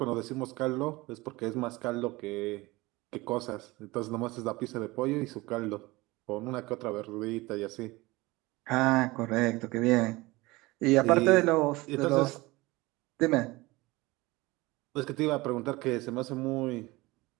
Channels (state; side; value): quieter; left; 21.5 dB